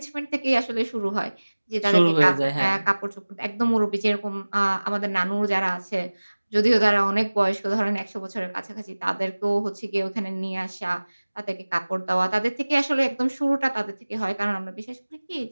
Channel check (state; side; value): inverted; both; correlation -1.00